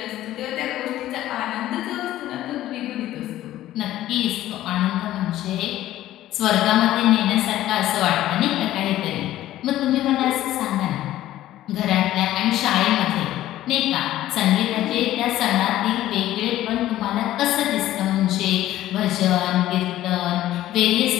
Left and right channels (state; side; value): quieter; right; 14.0 dB